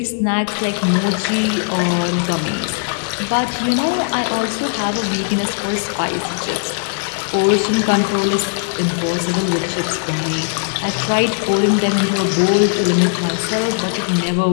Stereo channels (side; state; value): right; silent; digital silence